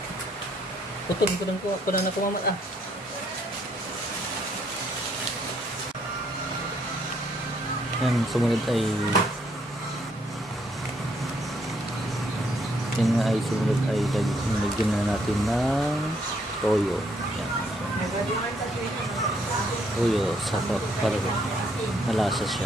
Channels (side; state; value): both; normal; correlation 0.70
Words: Putol ko na kumamat ah. Yan, sumunod ay lagyan na natin ng toyo. Yan. Toyo para malasa